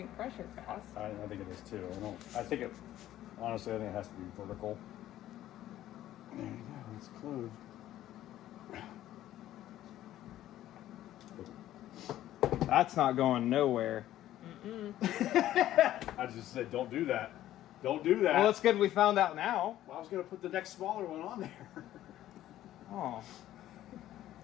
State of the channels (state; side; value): quieter; right; 13.3 dB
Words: pressure fast. I think it is too. Honestly, I think it has to be vertical. There you go. It's closed. That's not going nowhere. I just said, don't do that. Don't do that. Well, it's good we found out now. Well, I was going to put the next smaller one on there. Oh.